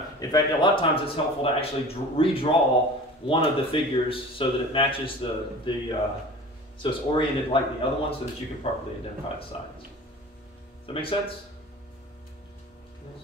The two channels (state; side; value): normal; both; correlation 0.39